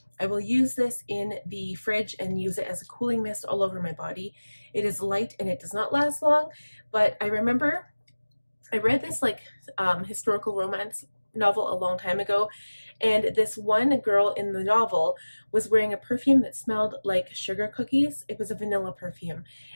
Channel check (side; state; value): both; inverted; correlation -1.00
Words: I will use this in the fridge and use it as a cooling mist all over my body. It is light and it does not last long, but I remember I read this like historical romance novel a long time ago, and this one girl in the novel was wearing a perfume that smelled like sugar cookies. It was a vanilla perfume,